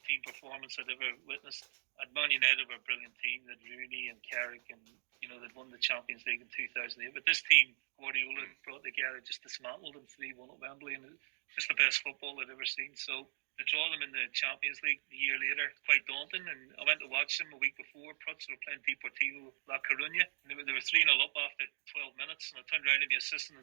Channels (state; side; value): silent; left; digital silence